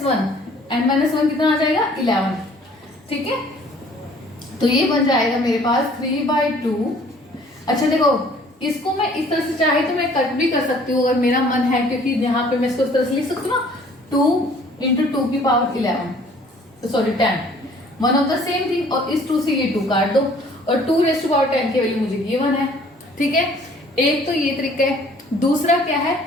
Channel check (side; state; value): both; normal; correlation 0.56